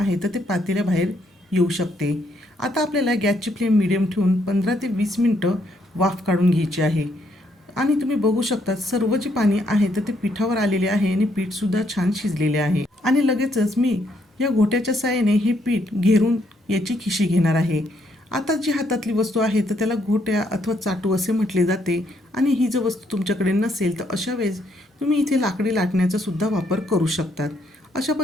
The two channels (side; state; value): both; normal; correlation 0.73